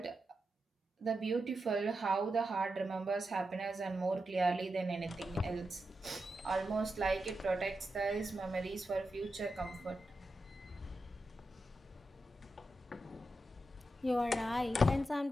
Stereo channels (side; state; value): both; normal; correlation 0.88